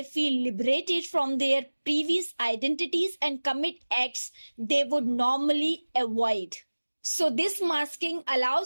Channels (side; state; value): both; inverted; correlation -1.00